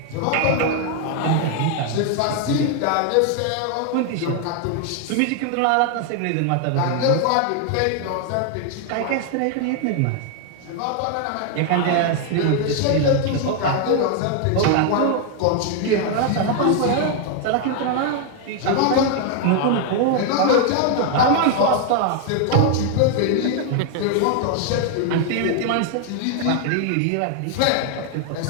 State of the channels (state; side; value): different; both; correlation 0.00